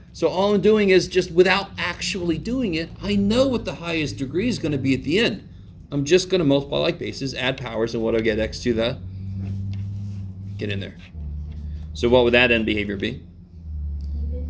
So all I'm doing is just without actually doing it, I know what the highest degree is going to be at the end. I'm just going to multiply like bases, add powers, and what do I get? X to the... Get in there. So what would that end behavior be?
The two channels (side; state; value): both; identical; correlation 1.00